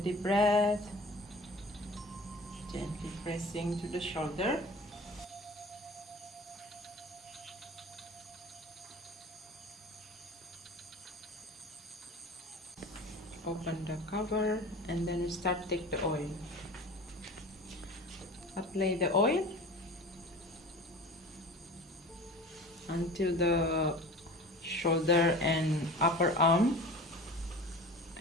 breath. Gently pressing to the shoulder. Open the cover and then start take the oil. Apply the oil until the shoulder and upper arm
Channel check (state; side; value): normal; both; correlation 0.38